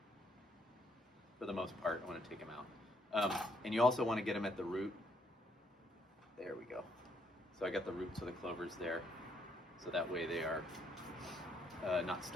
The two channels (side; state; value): both; normal; correlation 0.72